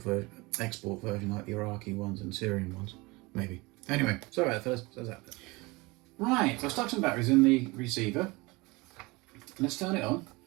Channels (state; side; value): quieter; left; 24.1 dB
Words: version like the Iraqi ones and Syrian ones, maybe. Anyway, sorry about that, fellas. Right, so I've stuck some batteries in the receiver. Let's turn it on.